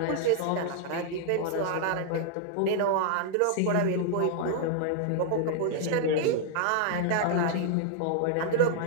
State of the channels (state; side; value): different; both; correlation -0.01